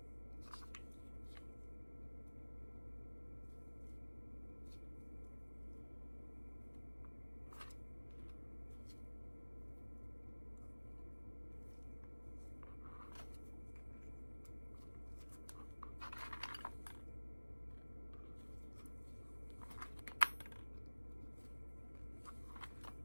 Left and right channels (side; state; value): both; inverted; correlation -1.00